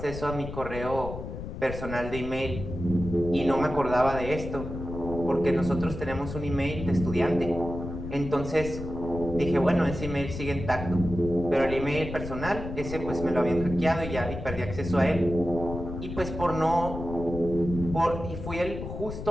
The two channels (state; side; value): noise; left; rumble, 8 dB below the sound